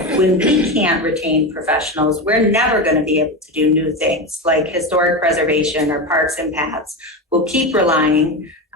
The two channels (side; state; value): both; normal; correlation 0.19